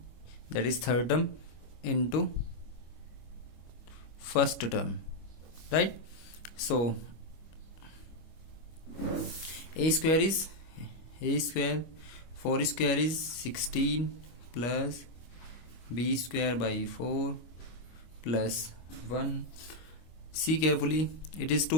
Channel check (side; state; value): right; late; 25 ms